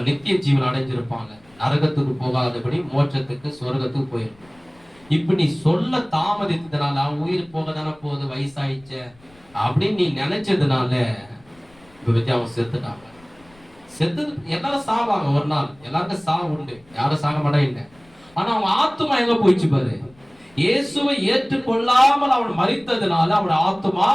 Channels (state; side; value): noise; left; rumble, 29 dB below the sound